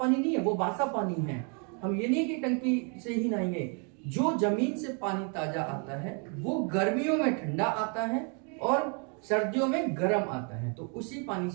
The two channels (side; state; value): left; quieter; 38.3 dB